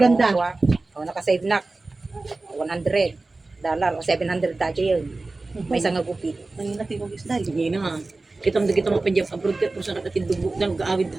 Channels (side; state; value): left; quieter; 3.3 dB